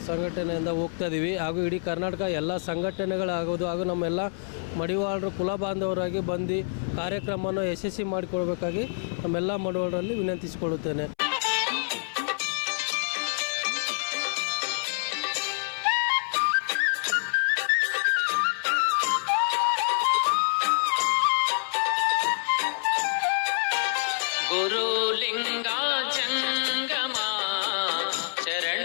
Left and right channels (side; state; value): right; silent; 60 dB below the other